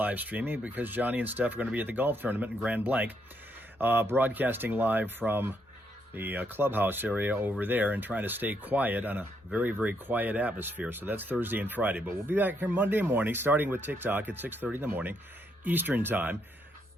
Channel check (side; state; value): both; normal; correlation 0.75